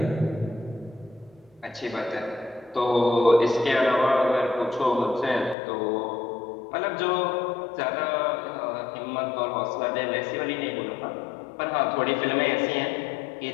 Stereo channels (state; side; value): drops out; right; at 5.6 s